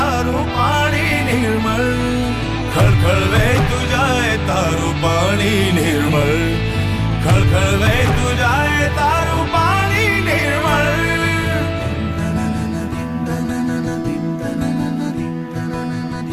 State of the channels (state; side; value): identical; both; correlation 1.00